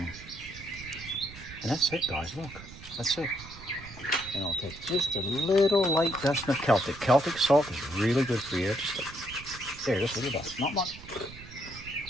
And that's it, guys. Look, that's it. And I'll take just a little light dust of Celtic. Celtic salt is really good for you. Just a little dust. Not much.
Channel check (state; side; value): noise; right; rumble, 16 dB below the sound